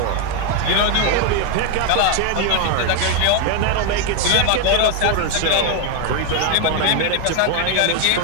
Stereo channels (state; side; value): different; both; correlation 0.01